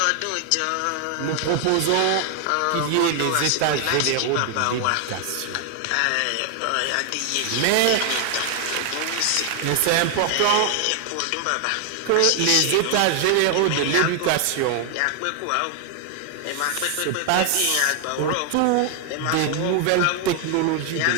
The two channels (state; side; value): different; both; correlation 0.00